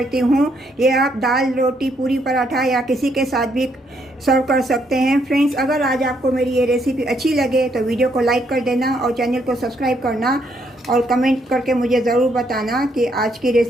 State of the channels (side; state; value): both; normal; correlation 0.73